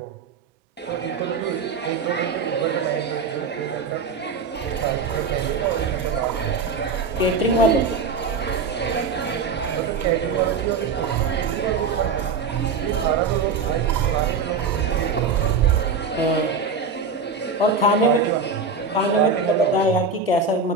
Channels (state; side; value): quieter; left; 4.7 dB